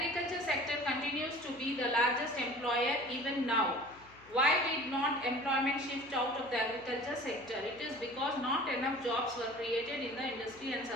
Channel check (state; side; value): noise; left; hum, 24 dB below the sound